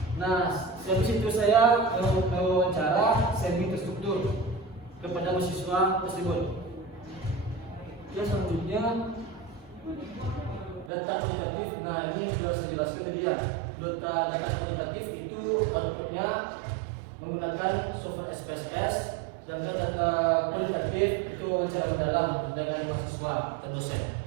Nah, habis itu saya mewawancara semi terstruktur kepada mahasiswa tersebut. Ya, selanjutnya data kuantitatif. Nah, ini sudah saya jelaskan tadi ya. Data kuantitatif itu outputnya menggunakan software SPSS. Sedangkan data kualitatif itu wawancara mendalam dengan mahasiswa atau dosen.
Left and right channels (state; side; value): drops out; left; at 10.9 s